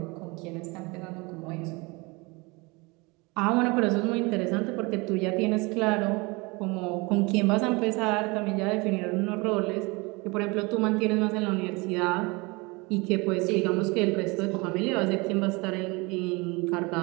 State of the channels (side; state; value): left; quieter; 26.2 dB